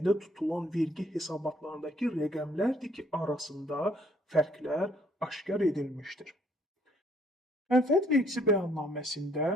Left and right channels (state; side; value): normal; both; correlation 0.65